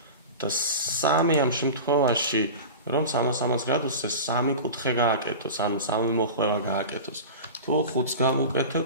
და 3 ამ შემთხვევაში, რომ 360 გრადუსზე 3 კუთხე გააკეთოს, ანუ 3 მოხვევა გააკეთოს. თუ 5-ს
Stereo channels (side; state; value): both; inverted; correlation -0.31